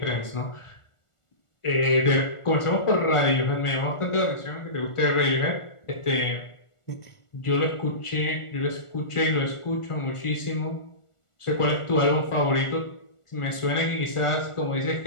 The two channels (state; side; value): late; right; 1.4 ms